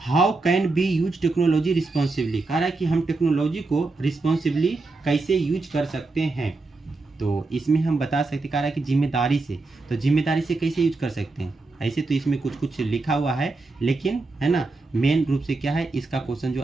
How can be use technology responsibly, कह रहा है कि हम टेक्नोलॉजी को रिस्पॉन्सिबली कैसे यूज कर सकते हैं। तो इसमें हम बता सकते, कह रहा है कि जिम्मेदारी से, तो जिम्मेदारी से कैसे यूज कर सकते हैं, ऐसे तो इसमें कुछ कुछ लिखा हुआ है, लेकिन है ना मेन रूप से क्या है, इसका क्वेश्चन जो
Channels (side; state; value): left; quieter; 3.5 dB